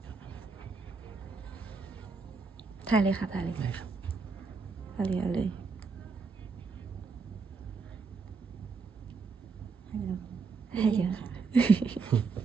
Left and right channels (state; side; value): quieter; left; 4.8 dB